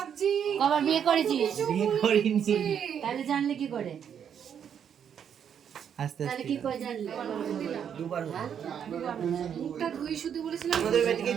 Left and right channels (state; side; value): quieter; left; 8.3 dB